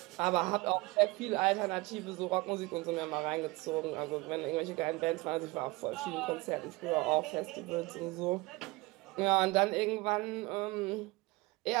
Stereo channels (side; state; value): left; quieter; 23.4 dB